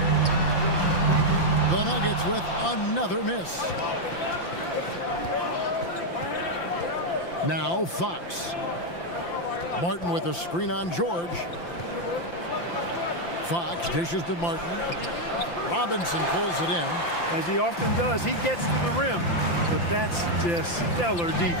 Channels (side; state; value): right; late; 5.8 ms